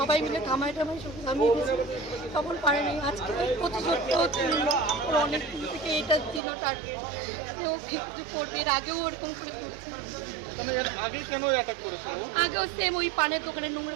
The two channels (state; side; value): drops out; left; at 6.4 s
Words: মিলে থামাই থামিয়ে গেছি, তখন পারেনি। আজকে প্রতিশোধটাও ছিল, ওর অনেক দিন থেকে এটা ছিল টার্গেট যে ও কিছু করবে। এর আগেও ওরকম করে করছে। আগেও সেম ওই পানের দোকানে